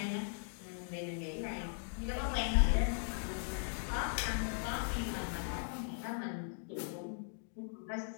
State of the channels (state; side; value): silent; right; digital silence